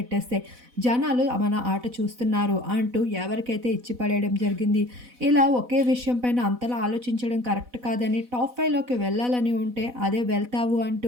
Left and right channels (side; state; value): left; late; 4.0 ms